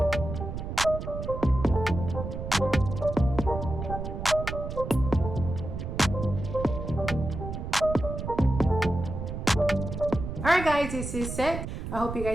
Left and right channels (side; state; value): right; noise; rumble, 6 dB below the sound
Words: right, guys, this is it. I hope you